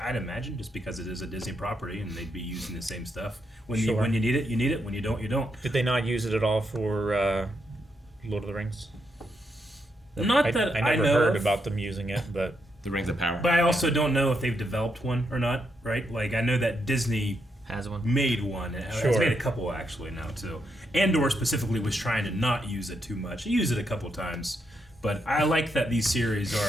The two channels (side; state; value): both; normal; correlation 0.80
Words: imagine just because it is a Disney property and they'd be using the same stuff. When you need it, you need it. When you don't, you don't. Did they not use it at all for Lord of the Rings? I never know heard of. about them using it, but the Rings of Power. But I also don't know if they've developed one or not, right? Like I know that Disney has one, made one. It's made a couple actually now too. Andor specifically was trying to not use it too much. He used it a couple times, but I like that these series